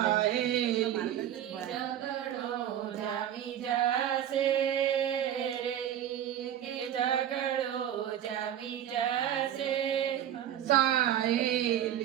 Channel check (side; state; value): left; quieter; 10.7 dB